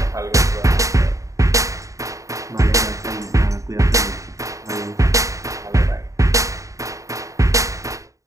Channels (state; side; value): late; left; 0.16 ms